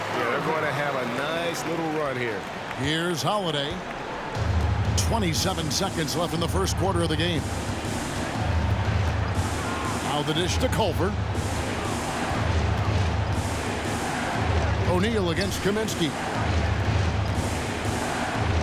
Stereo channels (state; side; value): identical; both; correlation 1.00